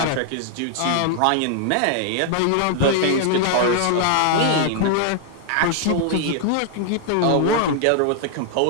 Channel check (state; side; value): different; both; correlation 0.00